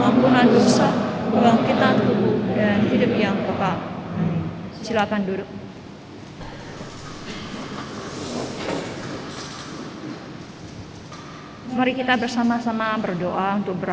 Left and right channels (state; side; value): identical; both; correlation 1.00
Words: dosa, kebangkitan tubuh, dan hidup yang kekal. Silakan duduk. Mari kita bersama-sama berdoa untuk